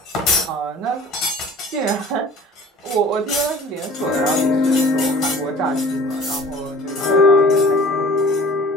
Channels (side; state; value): both; normal; correlation 0.45